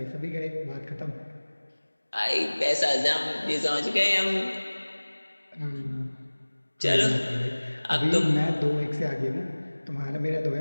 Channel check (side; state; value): both; inverted; correlation -1.00